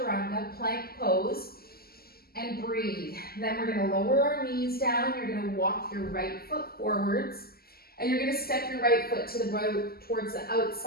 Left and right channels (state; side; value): late; right; 0.45 ms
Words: plank pose, and breathe. Then we're going to lower our knees down. You're going to walk your right foot forwards, and you're going to step your right foot to the right towards the